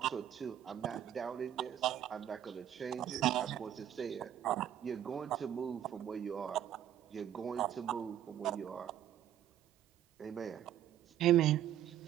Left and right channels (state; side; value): quieter; left; 10.8 dB